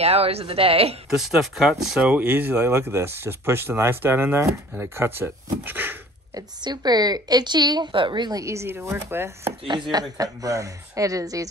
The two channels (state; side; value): normal; both; correlation 0.48